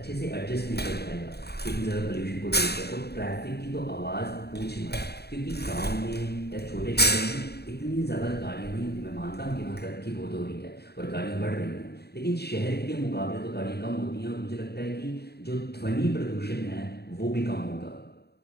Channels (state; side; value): late; right; 0.47 ms